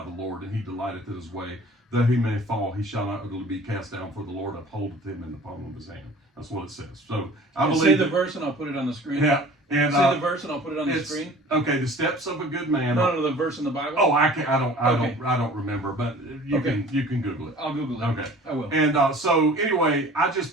the Lord, and he delighteth in his way. Though he may fall, he shall not utterly be cast down, for the Lord upholdeth him in the palm of his hand. That's what it says. So I believe. Say the verse, and I'll put it on the screen. Yeah. And say the verse, and I'll put it on the screen. Okay, the steps of a good man. No, the verse in the Bible. Oh, I don't remember, but you can Google it. I'll Google it. Okay, I will. And so anyway, I just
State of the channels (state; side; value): normal; both; correlation 0.46